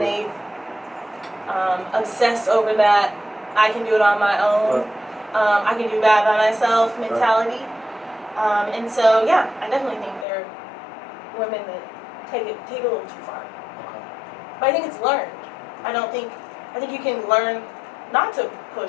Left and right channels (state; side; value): drops out; right; at 10.2 s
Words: they obsessed over that. I can do it on my own. I can do bad by myself mentality. And so, yeah, I definitely think there are women that take it a little too far. But I think it's learned. I think you can learn not to